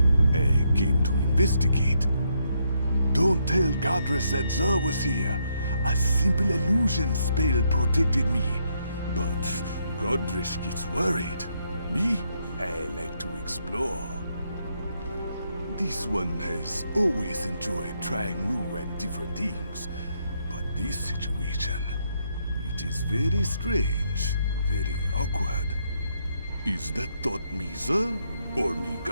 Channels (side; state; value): both; inverted; correlation -0.76